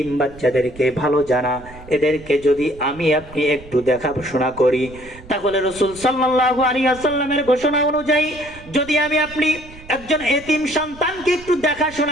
বাচ্চাদেরকে ভালো জানা, এদেরকে যদি আমি আপনি একটু দেখাশোনা করি, তাহলে রাসূল সাল্লাল্লাহু আলাইহি ওয়াসাল্লামের ঘোষণা অনুযায়ী যদি আমি আপনি একজন এতিম সন্তানকে একটু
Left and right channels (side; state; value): right; noise; rumble, 19 dB below the sound